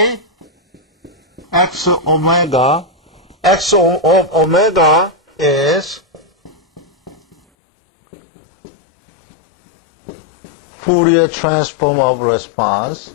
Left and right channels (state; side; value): drops out; right; at 7.4 s